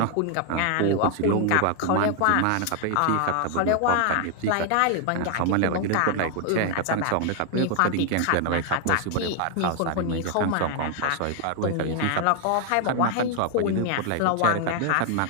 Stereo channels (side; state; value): both; different; correlation 0.00